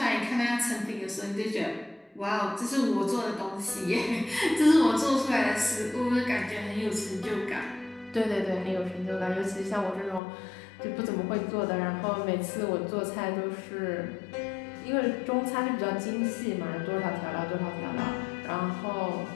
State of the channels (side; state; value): right; drops out; at 10.2 s